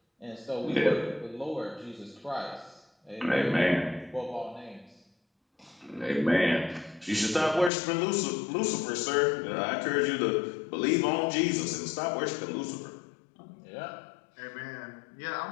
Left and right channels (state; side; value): drops out; right; at 7.7 s